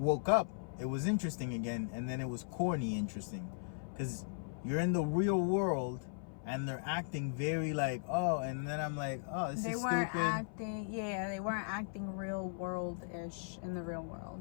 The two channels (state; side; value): silent; right; 53 dB below the other